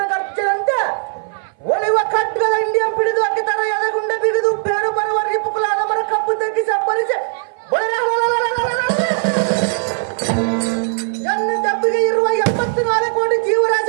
ಗರ್ಜೆಯಂತೆ ಒಲಿವ ಖಡ್ಗದ ಇಂಡಿಯನ್ ಪಿಡಿದು ಅಕ್ಕತರ ಎದಗುಂಡ ಬಿಗಿದು ಬೇರು ಬರುವ ರಿಪುಕುಲಾದ ಮರ ಕಪ್ಪು ತಗ್ಗಿಸಿ ಅಬ್ಬರಿಸಿ ಎನ್ನ ದೆಬ್ಬಿಗೆ ಇರುವ 74 ಕೋಟಿ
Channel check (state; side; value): silent; left; 59 dB below the other